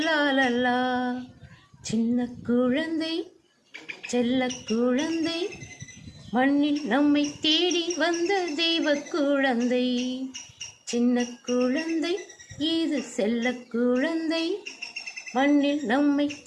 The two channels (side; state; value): both; identical; correlation 1.00